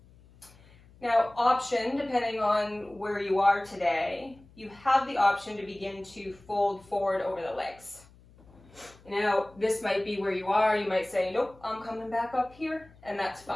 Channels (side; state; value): left; noise; hum, 26 dB below the sound